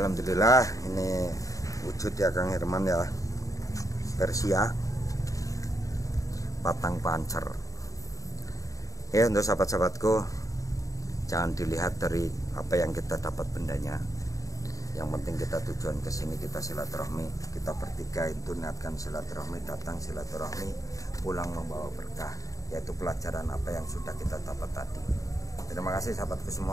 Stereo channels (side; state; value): right; late; 0.16 ms